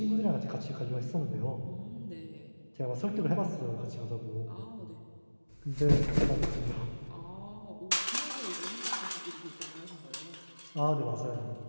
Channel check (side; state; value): both; inverted; correlation -1.00